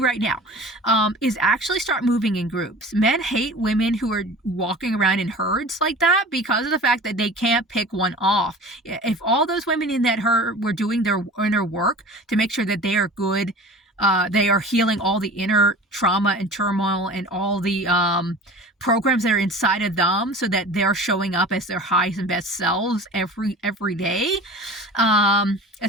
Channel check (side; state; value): both; normal; correlation 0.39